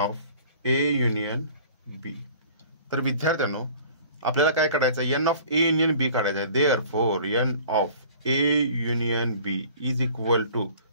A union B। तर विद्यार्थ्यांनो, आपल्याला काय काढायचं, n of A union B काढायचं आहे। Therefore n of A union B is equal to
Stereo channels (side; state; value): both; inverted; correlation -0.48